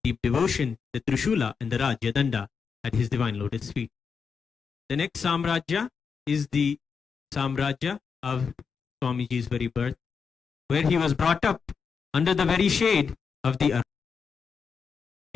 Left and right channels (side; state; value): right; quieter; 5.9 dB